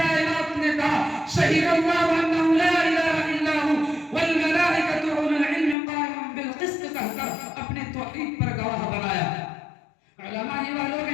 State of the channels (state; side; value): drops out; right; at 5.8 s